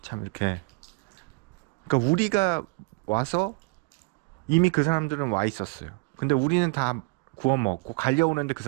참 이렇게, 그러니까 우리가 와서 이미 그 사람들은 와 있었어요. 근데 우리는 다 구워 먹고 갈려오는데 그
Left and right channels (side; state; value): left; quieter; 28.0 dB